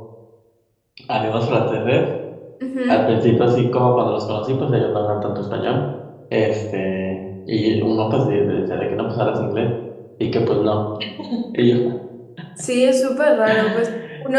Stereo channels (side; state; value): both; identical; correlation 1.00